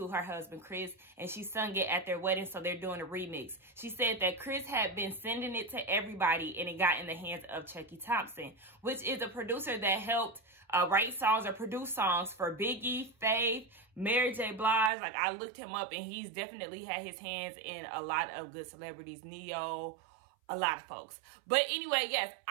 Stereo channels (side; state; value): left; drops out; at 14.9 s